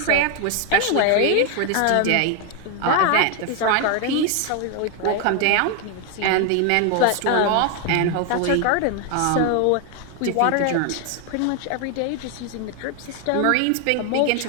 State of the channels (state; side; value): different; both; correlation 0.01